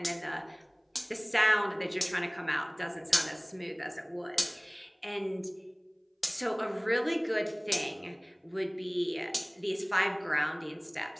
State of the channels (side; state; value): both; identical; correlation 1.00